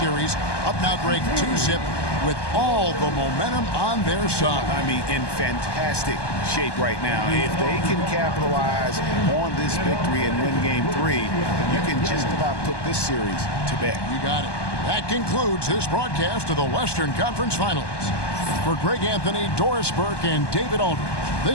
Up now break 2-zip with all the momentum on their side. I mean, in fantastic shape right now. If they can capitalize on this victory and win Game 3, you can just about put this series to bed. You got it. That concludes this broadcast of the Western Conference Finals. For Greg Anthony, Doris Burke, and David Aldridge,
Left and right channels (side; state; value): right; late; 1.2 ms